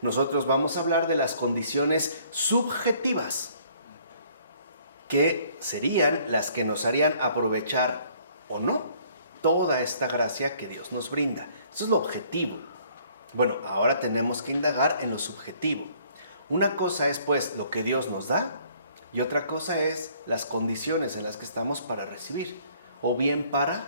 nosotros vamos a hablar de las condiciones subjetivas, que serían las que nos harían aprovechar o no toda esta gracia que Dios nos brinda. Eso es lo objetivo. Bueno, ahora tenemos que indagar en lo subjetivo. Una cosa es pues lo que Dios nos da y otra cosa es las condiciones en las que estamos para recibir o bien para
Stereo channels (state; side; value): inverted; both; correlation -0.60